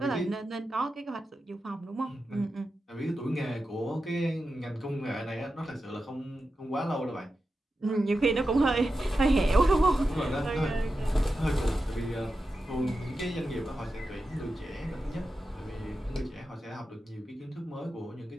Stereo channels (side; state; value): both; normal; correlation 0.91